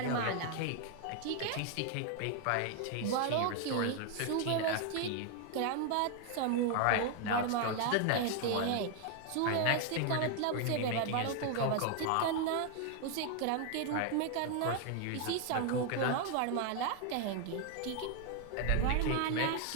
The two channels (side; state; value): both; different; correlation 0.01